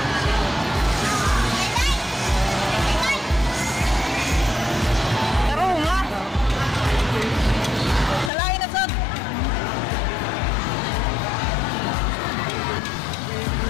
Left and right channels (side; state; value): right; drops out; at 8.3 s